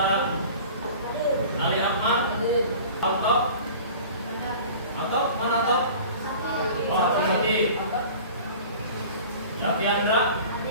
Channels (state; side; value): inverted; both; correlation -0.42